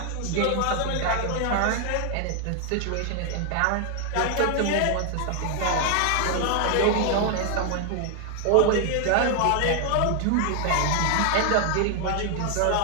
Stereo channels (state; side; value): different; both; correlation 0.00